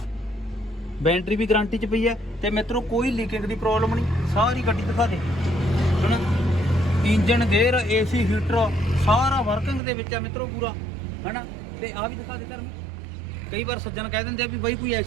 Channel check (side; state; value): left; drops out; at 9.8 s